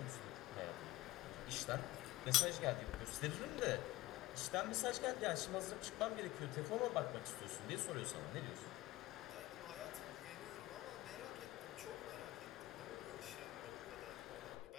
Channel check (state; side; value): quieter; right; 17.0 dB